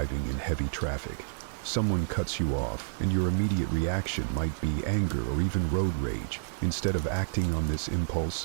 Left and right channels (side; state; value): left; silent; 58 dB below the other